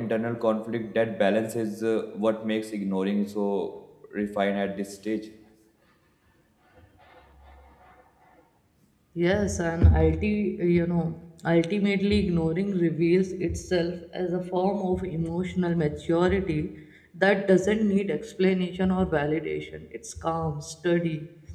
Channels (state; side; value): identical; both; correlation 1.00